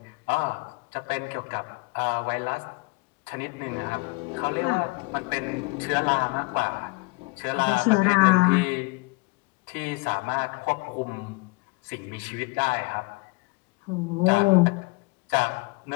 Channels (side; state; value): right; quieter; 26.5 dB